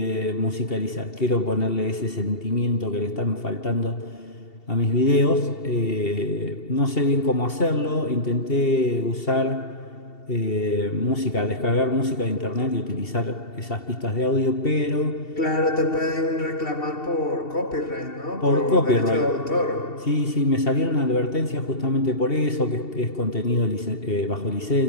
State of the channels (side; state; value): right; late; 2.7 ms